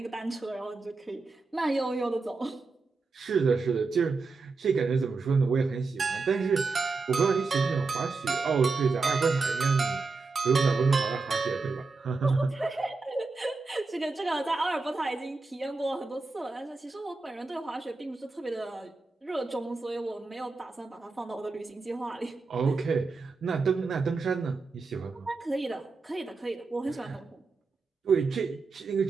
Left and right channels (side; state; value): left; quieter; 4.1 dB